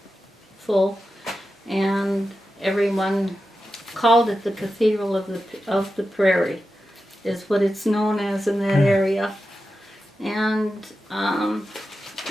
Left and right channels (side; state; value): both; normal; correlation 0.91